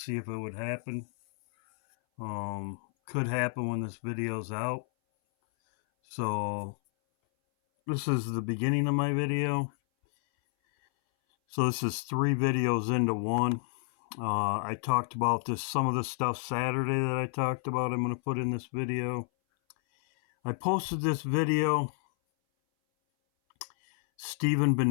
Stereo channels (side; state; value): right; silent; 58 dB below the other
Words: if it would happen. Could happen when this video's out. So this is the beginning of my video. So this is 3 videos into one. I talked about some of the stuff Saturday that I talked about. I'm going to put in this video. I posted this video. Stephen